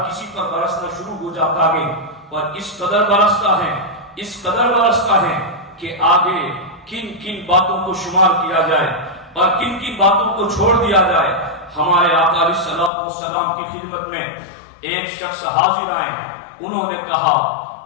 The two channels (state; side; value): drops out; right; at 12.9 s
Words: کسی پر برسنا شروع ہو جاتا ہے. اور اس قدر برستا ہے کہ آگے کن کن باتوں کو شمار کیا جائے اور کن کن باتوں کو چھوڑ دیا جائے. ہمارے آقا علیہ الصلوۃ والسلام کی خدمت میں ایک شخص حاضر آئے، انہوں نے کہا